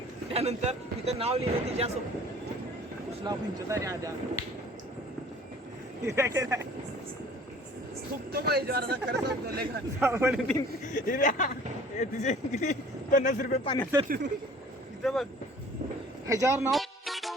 त्यानंतर तिथं नाव लिहिलं तिच्या उसला पंचतारी आद्या खूप तो पाहिजे खरं सांगतो तिचे किती 50 रुपये पाण्यात तिथं बघ ह्याच्यावर नाव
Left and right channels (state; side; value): normal; both; correlation 0.49